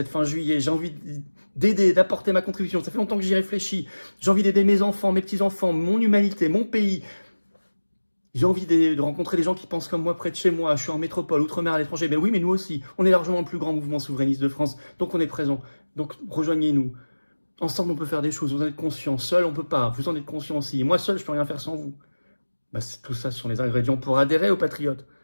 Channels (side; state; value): both; inverted; correlation -1.00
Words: fin juillet. J'ai envie d'aider, d'apporter ma contribution. Ça fait longtemps que j'y réfléchis. J'ai envie d'aider mes enfants, mes petits-enfants, mon humanité, mon pays. J'ai envie de rencontrer des gens qui pensent comme moi près de chez moi. Je suis en métropole, outre-mer, à l'étranger. Mais oui, mais nous aussi. On est largement le plus grand mouvement souverainiste de France. Donc on est présent. Donc rejoignez-nous. Ensemble, on peut faire des choses. Vous en êtes conscients. Seul, on peut pas. Vous en êtes conscients aussi. Et moi, seul, je peux rien faire sans vous. Tout ça, ce sont les ingrédients pour adhérer aux Patriotes.